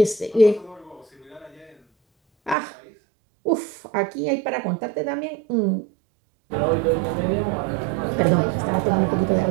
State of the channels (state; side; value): drops out; left; at 2.6 s